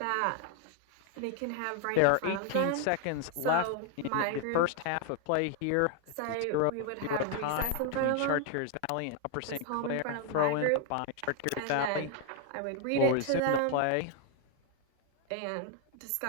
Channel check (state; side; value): different; both; correlation 0.00